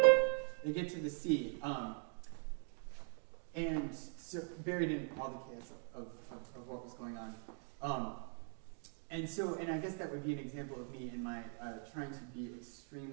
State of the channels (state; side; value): silent; left; 50 dB below the other